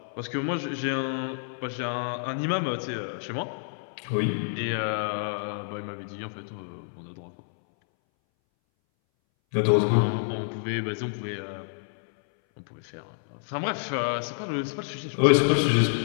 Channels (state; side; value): silent; right; 59 dB below the other